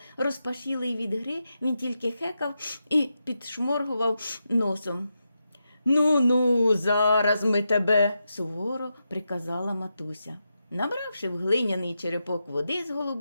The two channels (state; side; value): inverted; both; correlation -0.87